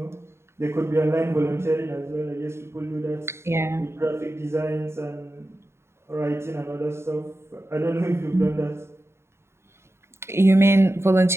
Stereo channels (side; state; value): left; late; 0.13 ms